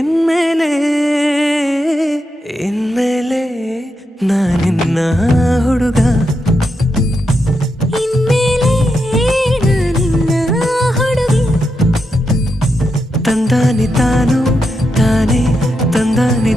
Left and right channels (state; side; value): normal; both; correlation 0.85